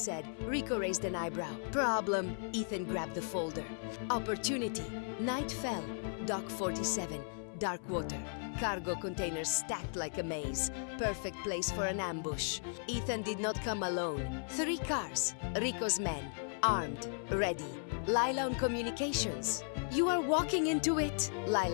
Rico raised an eyebrow. "Problem." Ethan grabbed the folder. "Opportunity." Night fell. Dock 47. Dark water. Cargo containers stacked like a maze. Perfect place for an ambush. Ethan did not come alone. 3 cars. Rico's men. Armed. Ready. Lila on communications. "You are walking into it,"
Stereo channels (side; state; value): right; silent; 54 dB below the other